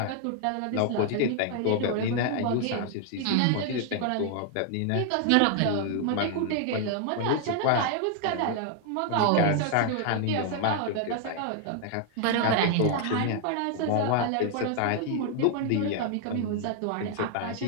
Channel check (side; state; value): both; different; correlation 0.00